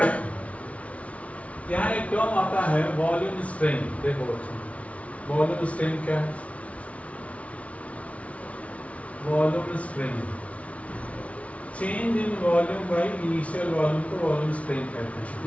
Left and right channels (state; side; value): late; right; 0.065 ms